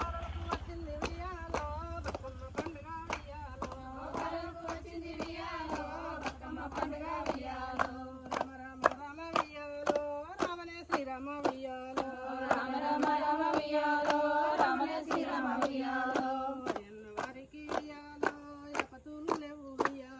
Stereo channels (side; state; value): both; identical; correlation 1.00